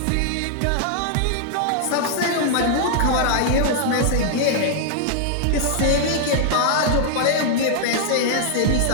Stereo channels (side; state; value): both; different; correlation -0.01